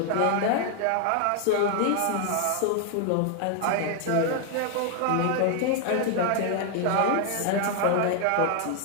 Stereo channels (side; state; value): both; different; correlation 0.00